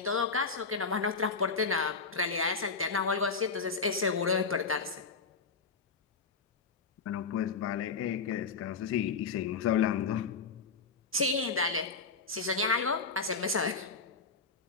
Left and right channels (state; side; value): quieter; right; 4.8 dB